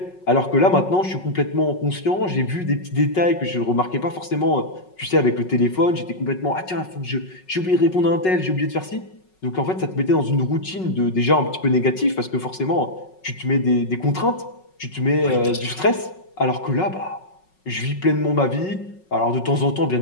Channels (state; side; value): late; right; 5.4 ms